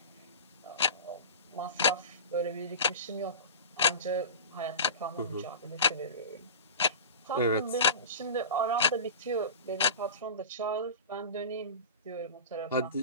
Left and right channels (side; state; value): both; inverted; correlation -0.31